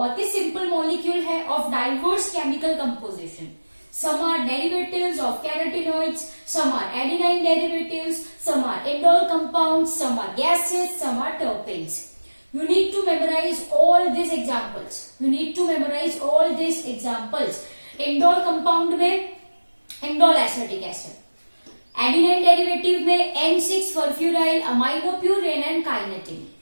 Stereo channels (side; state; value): both; inverted; correlation -1.00